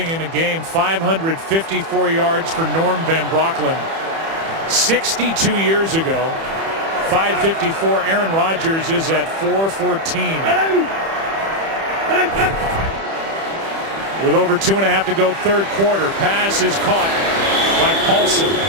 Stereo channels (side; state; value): left; late; 31 ms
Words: in a game, 554 yards for Norm Van Brocklin 62 years ago. 554. Aaron Rodgers is at 414. With over 2.5 to go, third quarter. Pass is caught by Paulson.